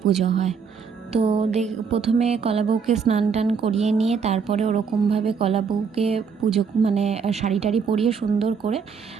পুজো হয়। তো প্রথমে কলা বউকে স্নান টান করিয়ে নিয়ে তারপরে ওরকমভাবে কলা বউকে পুজো মানে শাড়ি টাড়ি পরিয়ে সুন্দর করে,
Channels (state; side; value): quieter; left; 6.0 dB